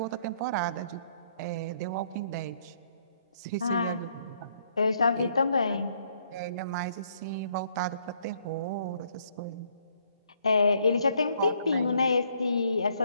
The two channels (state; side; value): inverted; both; correlation -0.68